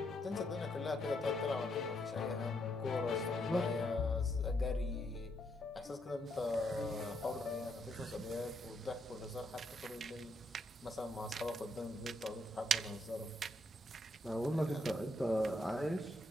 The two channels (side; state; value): both; normal; correlation 0.76